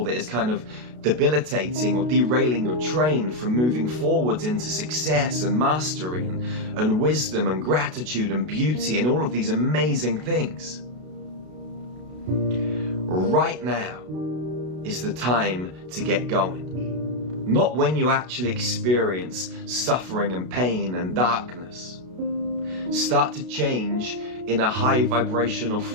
that is kind of debilitating or derailing your train from moving forwards into success and mastery and wisdom and gratitude and beauty and all of these amazing things, right now is the time to get going. Not when you actually experience suffering and pain and darkness. Start to change in a high vibrational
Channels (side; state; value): left; late; 32 ms